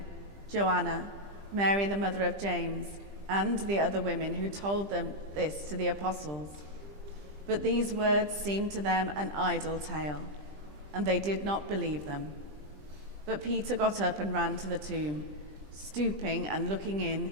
Joanna, Mary the mother of James, and the other women who told them this to the apostles. But these words seemed to them an idle tale, and they did not believe them. But Peter got up and ran to the tomb. Stooping and looking in,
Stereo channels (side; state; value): left; late; 20 ms